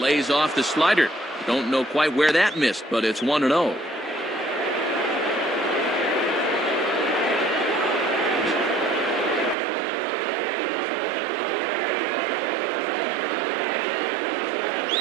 Lays off the slider. Don't know quite where that missed, but it's 1-0.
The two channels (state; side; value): drops out; left; at 9.6 s